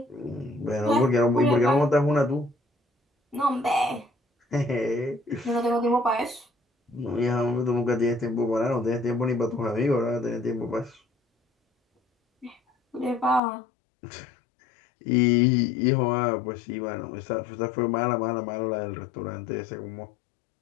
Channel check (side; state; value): right; drops out; at 13.4 s